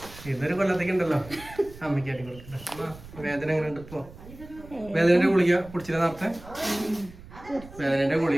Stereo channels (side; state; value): right; noise; rumble, 18 dB below the sound